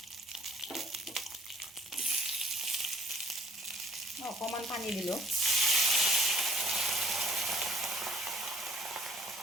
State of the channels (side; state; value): both; normal; correlation 0.57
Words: অকণমান পানী দিলোঁ।